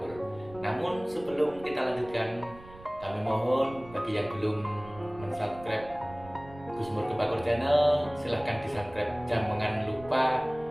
Namun sebelum kita lanjutkan, kami mohon bagi yang belum subscribe Gusmur Kebakur Channel, silahkan di subscribe, jangan lupa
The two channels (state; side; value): noise; right; rumble, 19 dB below the sound